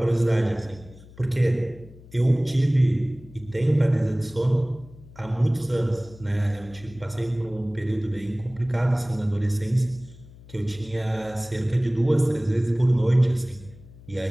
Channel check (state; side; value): noise; left; hum, 21 dB below the sound